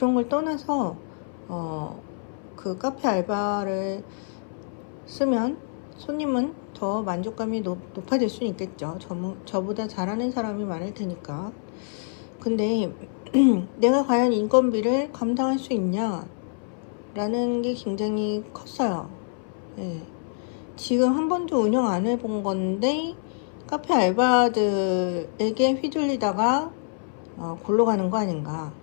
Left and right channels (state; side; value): silent; right; 58 dB below the other